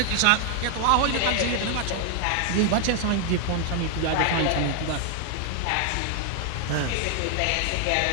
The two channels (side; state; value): both; different; correlation 0.00